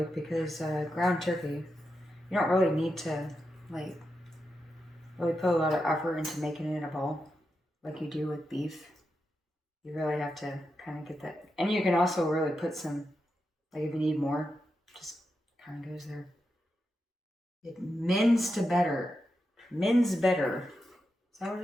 because ground turkey, you don't really need to like really put a lot of effort into making it a ball like you do with beef. You really have to kind of get that. And you can also really put some, like if you need more, just kind of goes there. It mends to better. Mends better. Is that what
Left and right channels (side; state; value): both; normal; correlation 0.87